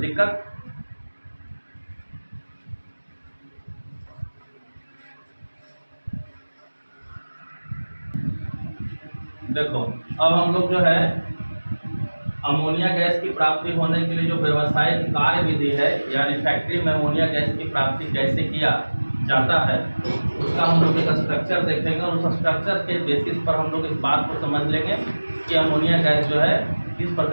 देखो अब हम लोग जो है अमोनिया गैस की प्राप्ति होने के लिए जो व्यावसायिक कार्यविधि है, यानी फैक्ट्री में अमोनिया गैस की प्राप्ति कैसे किया जाता है, उसका हम लोग एक स्ट्रक्चर देखेंगे और उस स्ट्रक्चर के बेसिस पर हम लोग इस बात को समझ लेंगे कि अमोनिया गैस जो है किस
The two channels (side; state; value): both; inverted; correlation -1.00